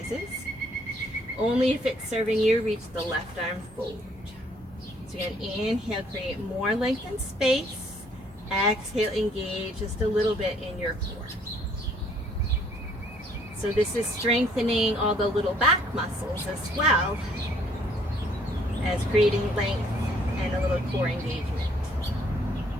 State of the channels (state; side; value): normal; both; correlation 0.63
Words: Only if it's serving you, reach the left arm forward. So again, inhale, create more length and space. Exhale, engage just a little bit in your core. So this is strengthening all the little back muscles as well as creating length and a little core engagement.